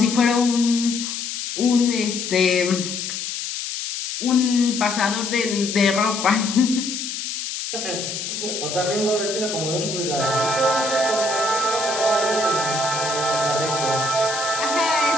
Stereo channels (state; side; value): noise; left; hiss, 5 dB below the sound